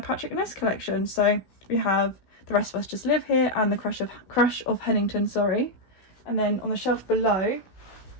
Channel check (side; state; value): right; late; 16 ms